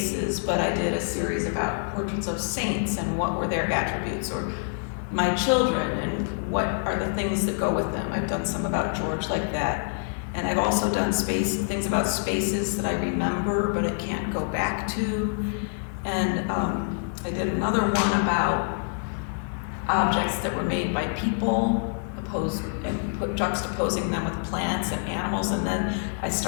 but I did a series about portraits of saints and what were their attributes, or my children and what are the things that go with them. I've done some about George like that. And I've also done things about spaces that I remember, but I can't go back to. And I did another one about objects that were made by people, juxtaposing them with plants and animals. And then I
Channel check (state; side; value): silent; right; 61 dB below the other